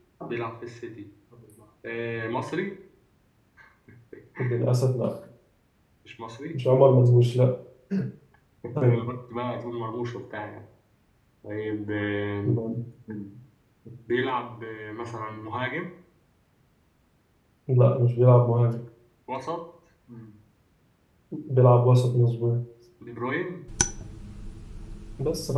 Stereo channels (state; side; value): identical; both; correlation 1.00